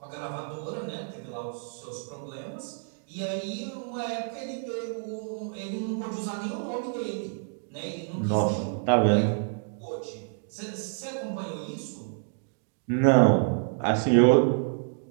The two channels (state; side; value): silent; left; digital silence